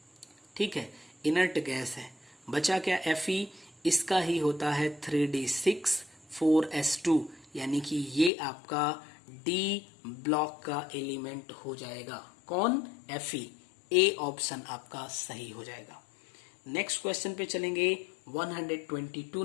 ठीक है, इनर्ट गैस है। बचा क्या Fe, इसका ही होता है 3d6 4s2, यानी कि ये आपका D ब्लॉक का एलिमेंट हो जाएगा। कौन? Fe। ए ऑप्शन आपका सही हो जाएगा। नेक्स्ट क्वेश्चन पे चलेंगे 122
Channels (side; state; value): right; drops out; at 8.3 s